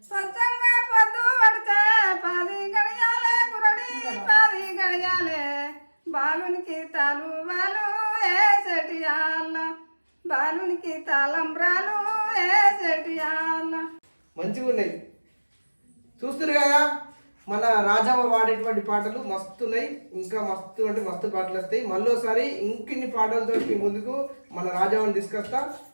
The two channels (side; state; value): both; inverted; correlation -1.00